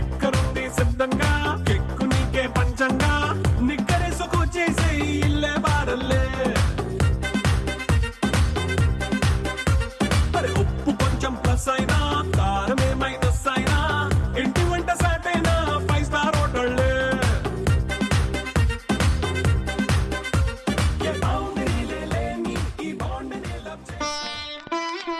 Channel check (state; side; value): identical; both; correlation 1.00